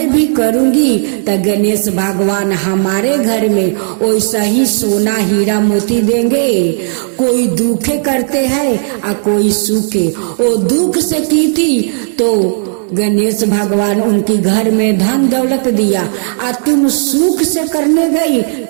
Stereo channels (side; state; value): left; silent; digital silence